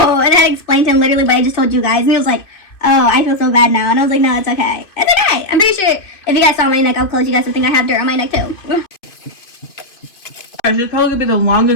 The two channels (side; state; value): right; late; 2.5 ms